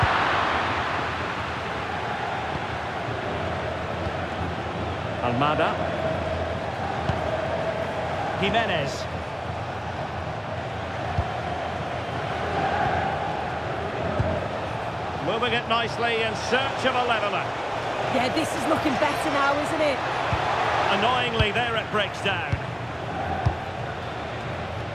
Almada. Jimenez. Moving it nicely in search of a leveller. Yeah, this is looking better now, isn't it? Annoyingly, there it breaks down.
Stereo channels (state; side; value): identical; both; correlation 1.00